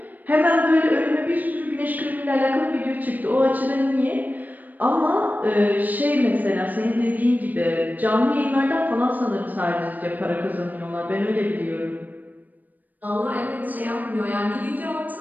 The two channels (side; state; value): left; late; 0.083 ms